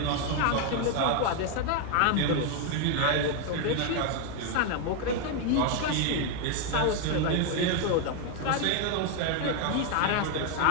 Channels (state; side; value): different; both; correlation 0.01